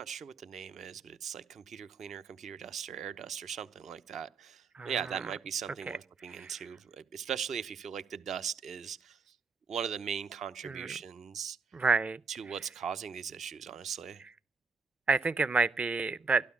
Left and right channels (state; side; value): quieter; left; 4.9 dB